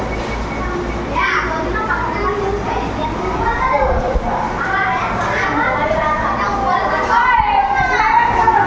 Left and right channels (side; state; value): both; identical; correlation 1.00